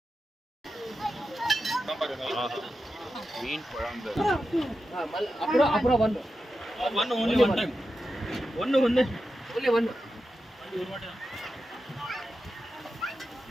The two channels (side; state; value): both; normal; correlation 0.90